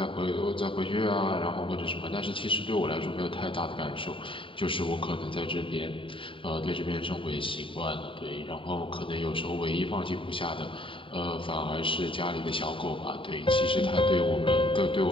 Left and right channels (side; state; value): right; late; 0.25 ms